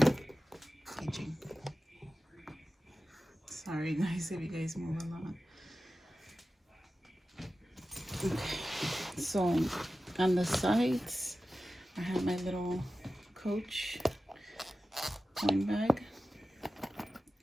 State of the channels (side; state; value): both; normal; correlation 0.94